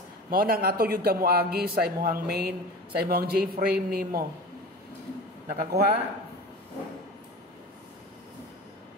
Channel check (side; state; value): both; normal; correlation 0.34